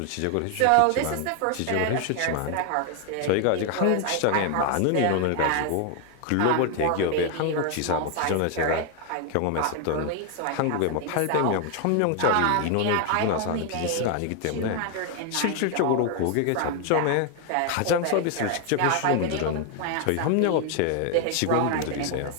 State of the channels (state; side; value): different; both; correlation 0.01